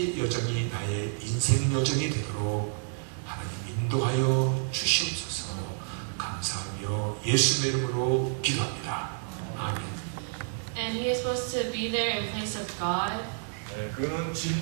여정이 나의 인생 여정이 되도록 하나님 인도하여 주시옵소서. 감사하며 예수의 이름으로 기도합니다. 아멘. And he is supposed to be there in place of God. 네, 그는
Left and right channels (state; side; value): silent; left; 58 dB below the other